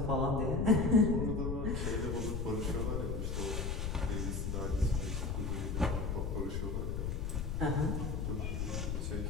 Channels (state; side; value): noise; left; rumble, 1 dB below the sound